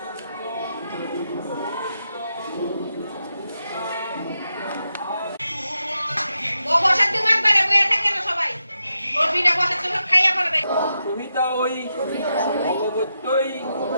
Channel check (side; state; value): both; inverted; correlation -0.86